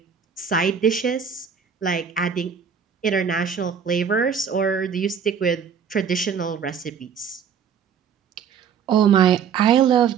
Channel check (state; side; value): quieter; left; 7.1 dB